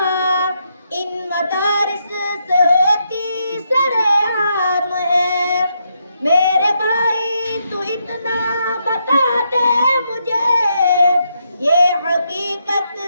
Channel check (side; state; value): both; inverted; correlation -0.79